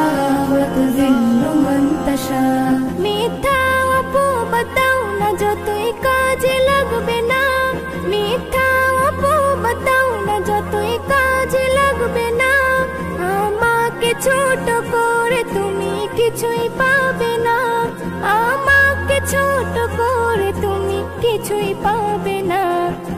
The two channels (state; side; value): identical; both; correlation 1.00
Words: ওয়াতুযিল্লু মান তাশা। মিথ্যা অপবাদাও না যতই কাজে লাগবে না, মিথ্যা অপবাদাও না যতই কাজে লাগবে না। আমাকে ছোট করে তুমি কিছুই পাবে না, আমাকে ছোট করে তুমি কিছুই পাবে না।